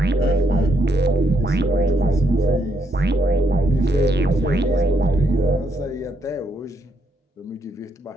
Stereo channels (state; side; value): normal; both; correlation 0.76